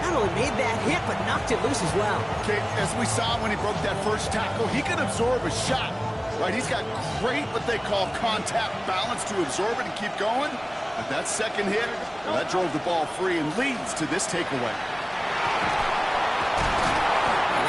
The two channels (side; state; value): both; identical; correlation 1.00